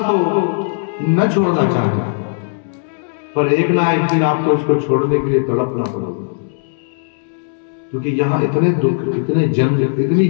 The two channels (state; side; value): silent; right; digital silence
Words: को न छोड़ना चाहते, पर एक ना एक दिन आपको इसको छोड़ने के लिए तड़पना पड़ेगा, क्योंकि यहाँ इतने दुख, इतने जंग, इतनी